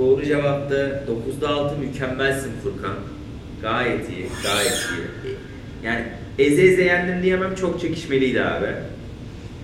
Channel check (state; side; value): identical; both; correlation 1.00